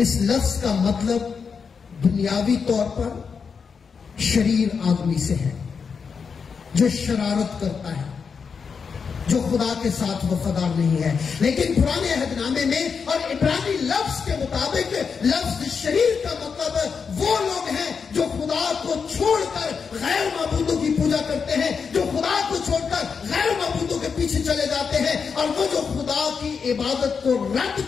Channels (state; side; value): quieter; right; 5.8 dB